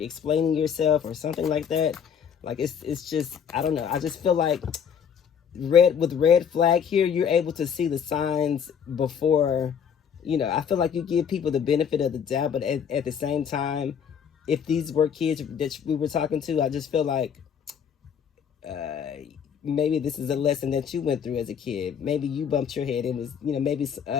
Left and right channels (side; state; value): right; quieter; 7.6 dB